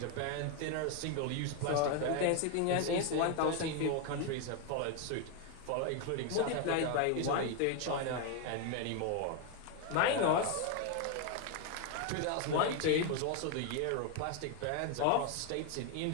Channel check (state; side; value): different; both; correlation 0.01